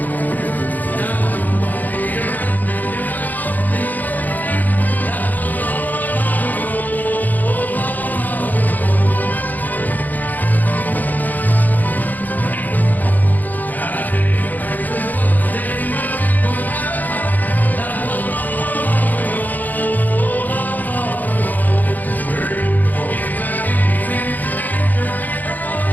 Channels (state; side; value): late; right; 0.083 ms